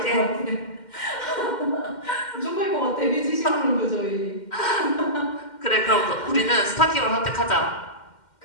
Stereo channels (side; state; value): right; late; 2.1 ms